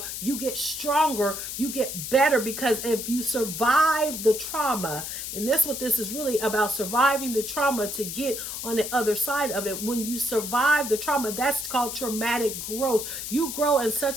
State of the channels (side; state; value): left; noise; hiss, 6 dB below the sound